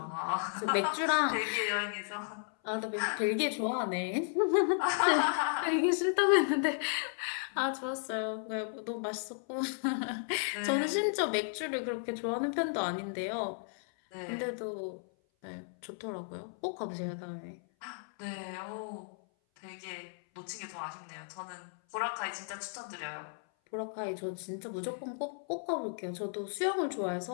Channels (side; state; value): right; silent; 55 dB below the other